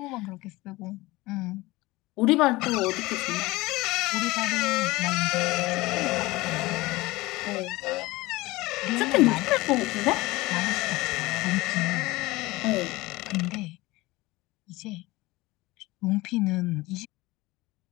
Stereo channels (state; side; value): quieter; right; 20.5 dB